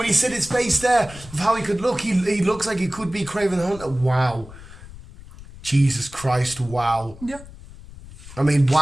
he said his face there, of how he could look, he looks like he could be Kraven the Hunter. Wow. Jesus Christ, wow. Yeah. I mean,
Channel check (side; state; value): left; noise; rumble, 17 dB below the sound